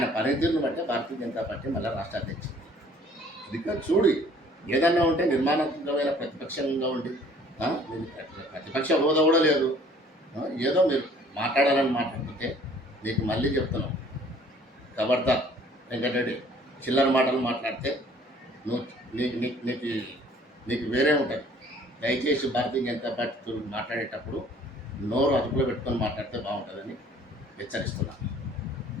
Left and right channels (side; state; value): both; normal; correlation 0.55